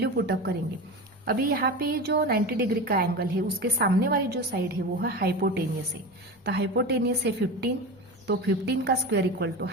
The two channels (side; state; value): both; normal; correlation 0.26